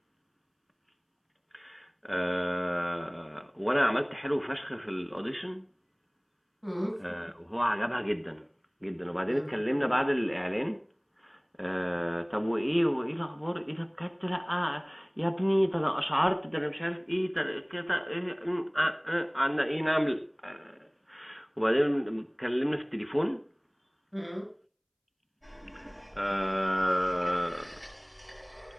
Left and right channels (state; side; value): identical; both; correlation 1.00